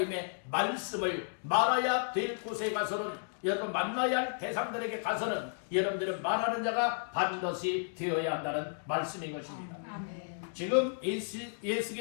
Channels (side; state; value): right; silent; digital silence